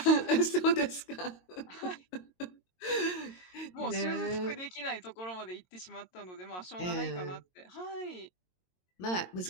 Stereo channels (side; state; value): right; late; 22 ms